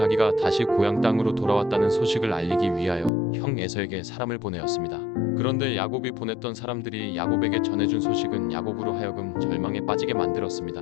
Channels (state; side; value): drops out; right; at 3.1 s